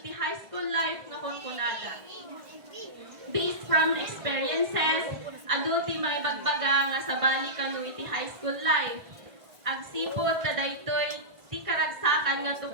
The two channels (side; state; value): left; late; 1.6 ms